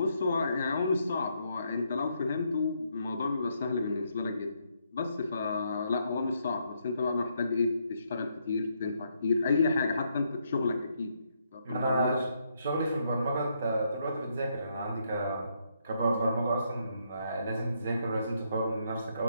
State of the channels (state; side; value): inverted; both; correlation -0.76